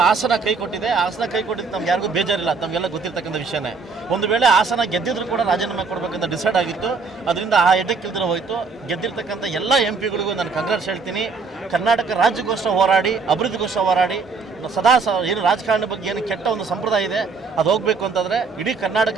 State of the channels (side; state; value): left; quieter; 4.7 dB